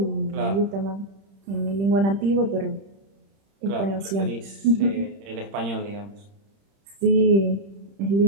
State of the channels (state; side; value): late; left; 30 ms